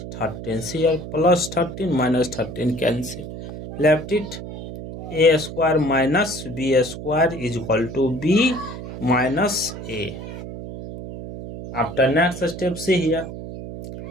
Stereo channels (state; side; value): noise; right; hum, 10 dB below the sound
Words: 13. See here, plus 13 minus 13 cancel. Left it, a square minus b square is equal to b minus a. After next step, see here,